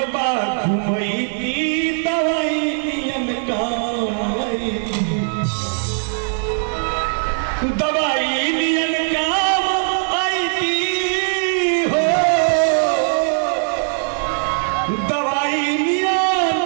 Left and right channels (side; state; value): left; silent; digital silence